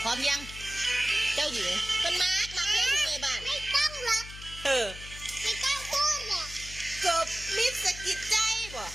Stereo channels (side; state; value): left; noise; hum, 14 dB below the sound